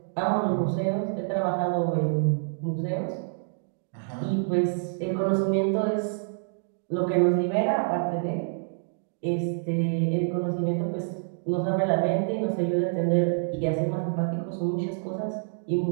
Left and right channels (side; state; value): left; silent; digital silence